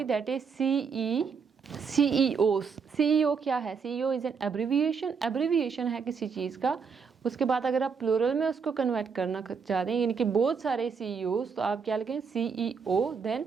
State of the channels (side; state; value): left; quieter; 5.8 dB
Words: दैट इज CEOs। CEO क्या है, CEO is an abbreviation, abbreviation है किसी चीज़ का। उसके बाद अगर आप प्लूरल में उसको कन्वर्ट करना चाह रहे हैं, यानी कि बहुत सारे CEOs, तो आप क्या लिखेंगे, CEO, देन